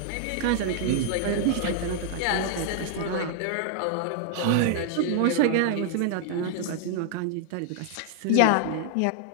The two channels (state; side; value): different; both; correlation 0.00